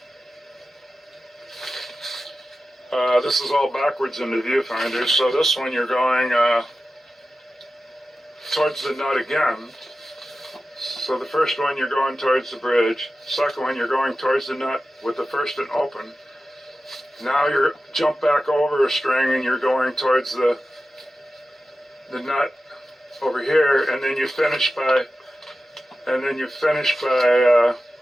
this is all backwards in the viewfinder, so this one you're going towards the nut again. So the first one you're going towards the bridge, second one you're going towards the nut with the first and open. Now you're jump back over a string and you're going towards the nut over here, and then you finish by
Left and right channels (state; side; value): normal; both; correlation 0.93